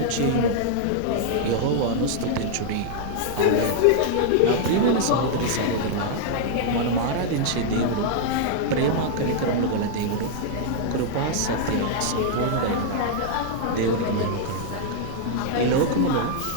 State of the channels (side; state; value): both; different; correlation -0.01